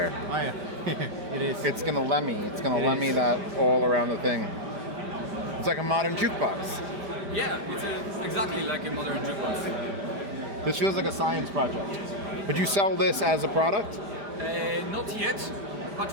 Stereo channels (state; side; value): late; left; 5.0 ms